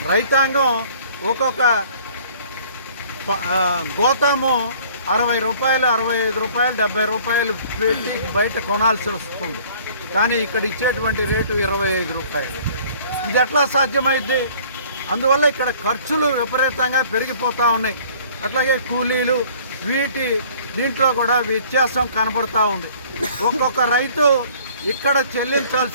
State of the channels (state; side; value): inverted; both; correlation -0.53